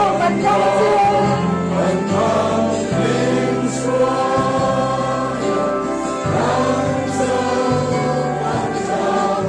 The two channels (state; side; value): identical; both; correlation 1.00